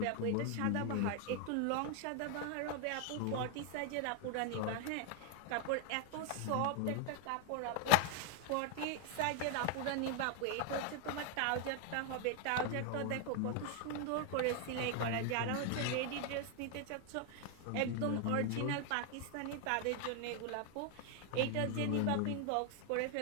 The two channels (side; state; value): both; different; correlation 0.01